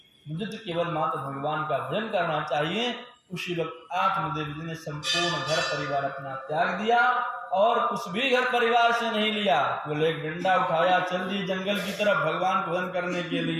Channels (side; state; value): both; identical; correlation 1.00